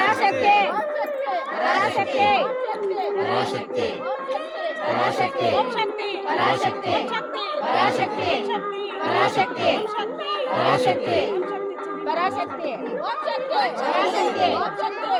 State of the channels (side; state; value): both; identical; correlation 1.00